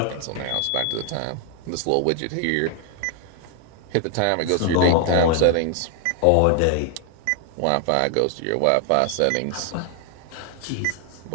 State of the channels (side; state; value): both; different; correlation 0.00